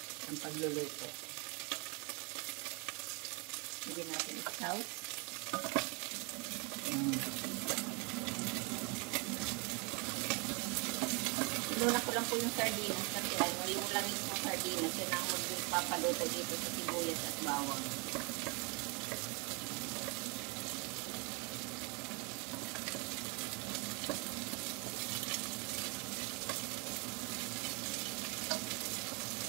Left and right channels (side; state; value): left; quieter; 31.8 dB